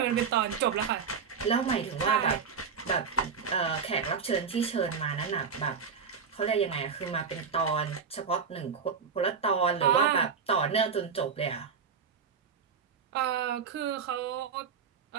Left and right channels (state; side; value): quieter; left; 6.1 dB